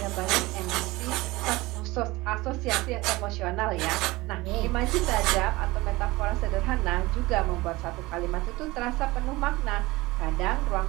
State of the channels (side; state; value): left; quieter; 20.8 dB